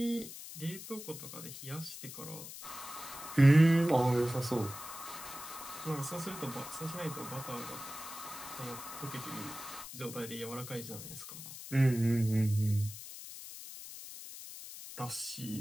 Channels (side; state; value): left; noise; hiss, 11 dB below the sound